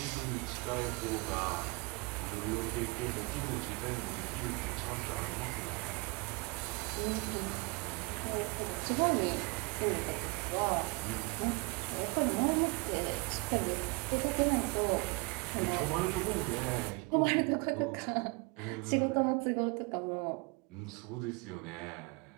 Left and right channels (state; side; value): quieter; left; 28.3 dB